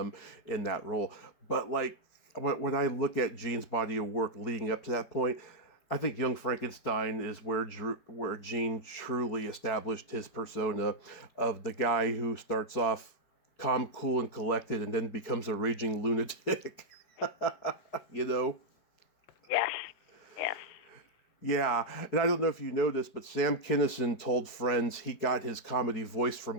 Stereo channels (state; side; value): late; right; 4.6 ms